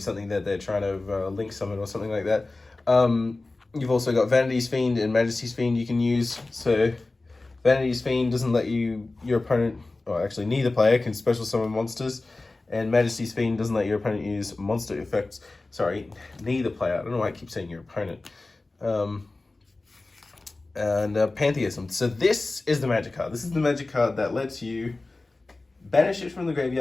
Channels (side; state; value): right; quieter; 3.2 dB